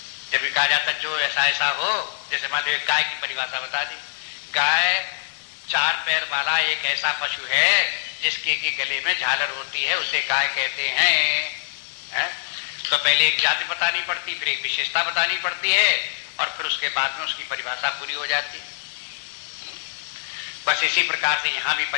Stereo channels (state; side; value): silent; right; 63 dB below the other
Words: जब भी कहा जाता जो ऐसा ऐसा हो, जैसे मान लो गाय की परिभाषा बता दी। गाय 4 पैर वाला एक ऐसा पशु है जिसके की गले में झालर होती है, उसे गाय कहते हैं। तो पहले एक जाति बतानी पड़ती, फिर एक विशेषता बतानी पड़ती है और फिर उसके बाद में उसकी परिभाषा पूरी हो जाती है। बस इसी प्रकार से यहां भी